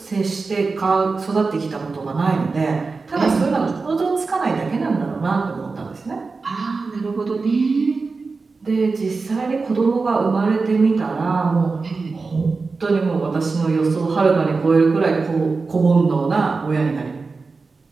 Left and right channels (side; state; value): left; quieter; 4.2 dB